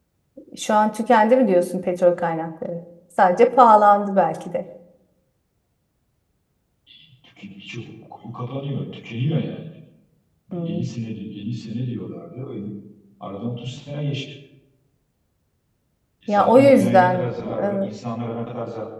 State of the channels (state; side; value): identical; both; correlation 1.00